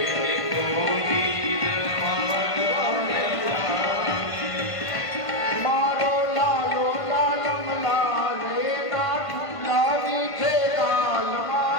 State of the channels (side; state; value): right; late; 1.5 ms